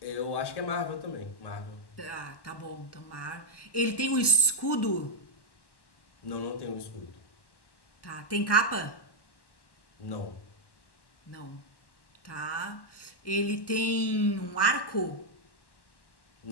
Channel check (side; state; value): right; late; 1.1 ms